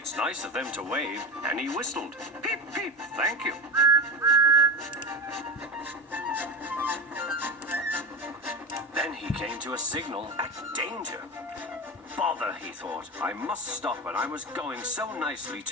nice of them to wave, and he whistled. Peep, peep, thank you. Then he came to a signal at danger. Bother, he thought. I must stop, and I was going so nicely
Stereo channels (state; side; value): normal; both; correlation 0.23